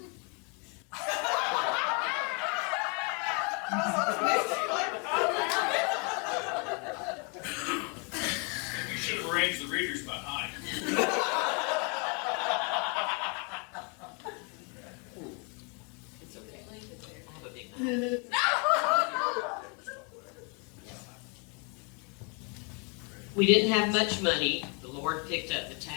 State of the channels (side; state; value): right; quieter; 35.0 dB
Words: You should have arranged the readers behind. It's okay. I have a big We didn't have much money. The Lord picked up the